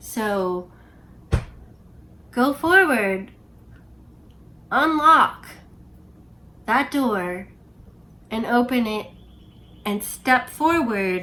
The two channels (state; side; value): identical; both; correlation 1.00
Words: go forward, unlock that door and open it and step